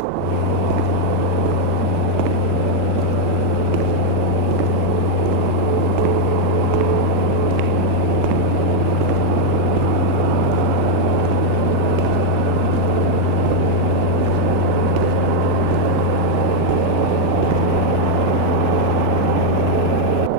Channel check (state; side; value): different; both; correlation 0.01